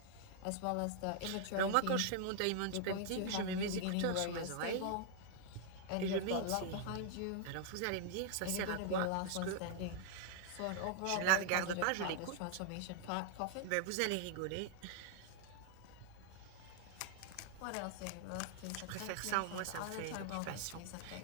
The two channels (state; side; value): different; both; correlation 0.00